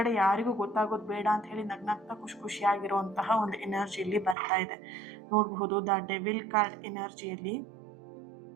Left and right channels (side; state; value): left; drops out; at 4.4 s